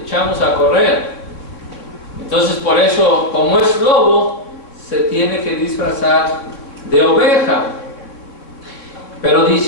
a correr. Entonces, por eso, como es lobo, se tiene que disfrazar de oveja. Pero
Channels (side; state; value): right; late; 3.5 ms